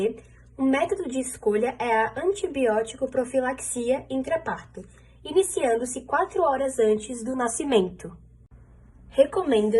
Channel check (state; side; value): identical; both; correlation 1.00